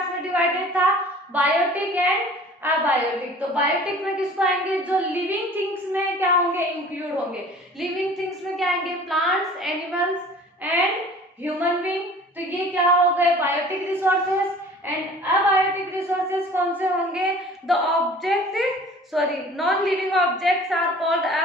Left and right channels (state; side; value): normal; both; correlation 0.46